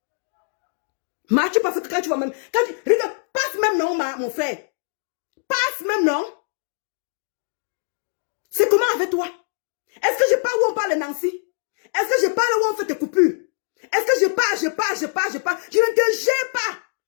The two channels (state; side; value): silent; right; digital silence